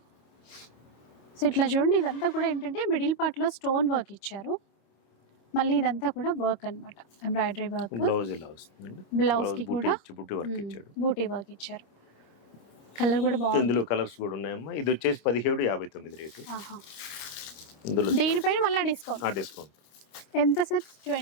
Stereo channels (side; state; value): right; late; 26 ms